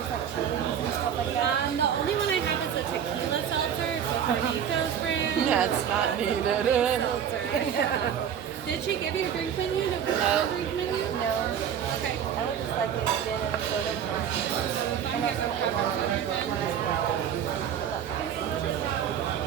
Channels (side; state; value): left; quieter; 8.7 dB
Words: like chilies and stuff like that? The only one I have is a tequila seltzer. It's a Carnitos brand. That's not needed. Seltzer. Did she give you a drink menu? No. Drink menu? No. Okay. I would just like a gin and a soda with mine. I'm here from Pepper Soda then.